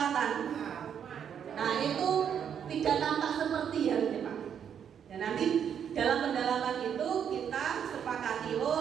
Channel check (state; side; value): quieter; left; 8.3 dB